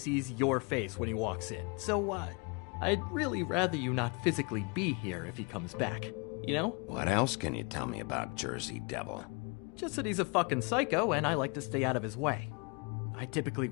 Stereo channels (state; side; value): quieter; right; 32.1 dB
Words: your face when he walks in. So, I'd really rather you not physically be here if he comes back. You know? What else can you tell me about Jersey Devil? Just that he's a fucking psycho and I like to stay out of his way. I typically